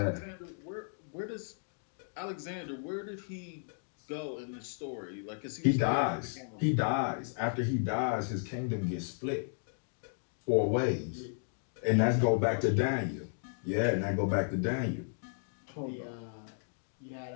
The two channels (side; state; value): right; silent; digital silence